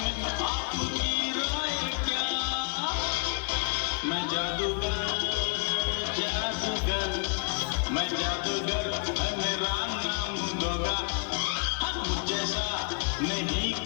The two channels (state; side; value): quieter; right; 37.0 dB